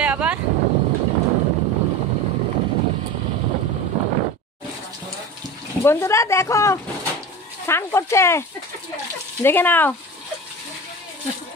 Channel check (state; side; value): normal; both; correlation 0.31